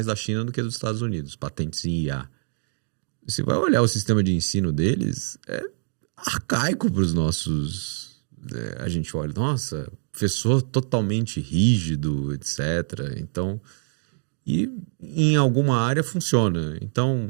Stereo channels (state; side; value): silent; left; digital silence